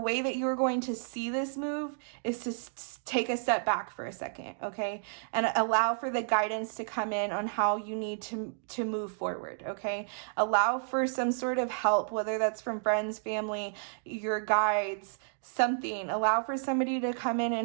that you're going to see this move is to take a step back for a second, okay? And allow for the guidance to come in on how you need to move forward, okay? Allow for some sort of help, whether that's from friends, family, your guides, something. Allow for somebody to come in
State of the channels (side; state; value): left; silent; digital silence